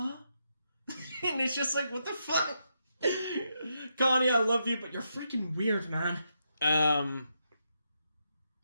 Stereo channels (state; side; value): inverted; both; correlation -0.82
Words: And it's just like, what the fuck? Connie, I love you, but you're freaking weird, man.